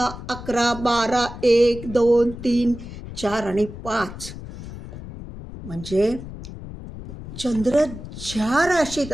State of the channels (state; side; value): noise; left; rumble, 12 dB below the sound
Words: 11, 12, 1, 2, 3, 4 आणि 5. म्हणजे चंद्र ज्या राशीत